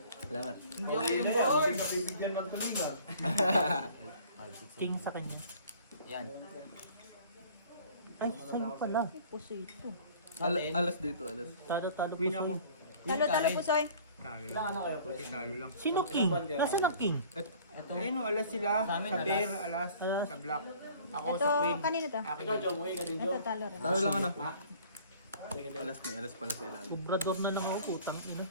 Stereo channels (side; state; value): both; inverted; correlation -0.50